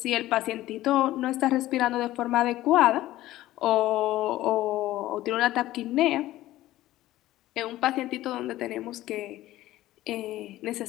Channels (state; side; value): quieter; right; 15.5 dB